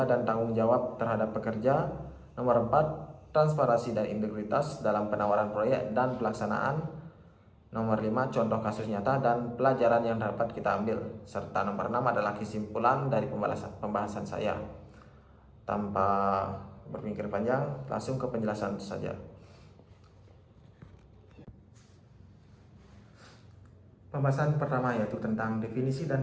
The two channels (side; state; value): both; identical; correlation 1.00